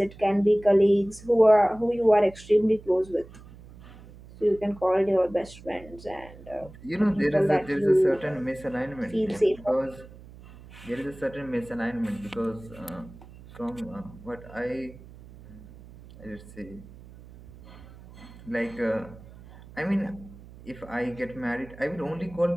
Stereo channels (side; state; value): right; noise; hum, 19 dB below the sound